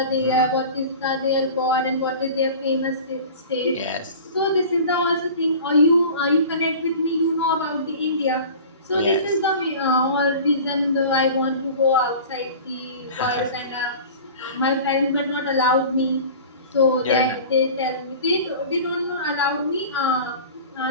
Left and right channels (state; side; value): inverted; both; correlation -0.39